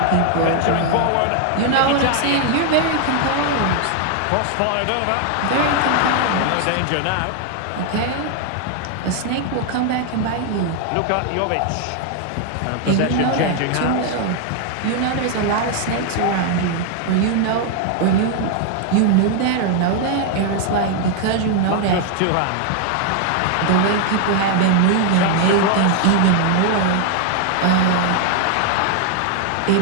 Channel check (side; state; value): both; different; correlation 0.00